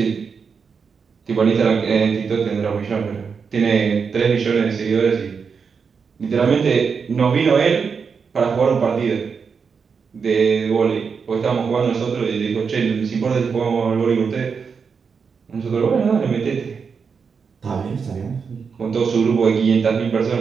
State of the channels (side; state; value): left; quieter; 5.8 dB